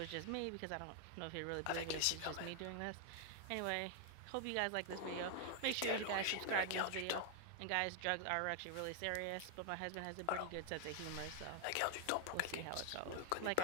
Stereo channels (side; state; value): both; different; correlation 0.00